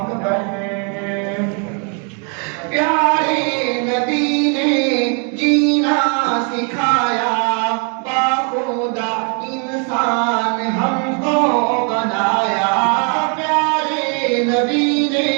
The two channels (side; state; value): left; quieter; 39.2 dB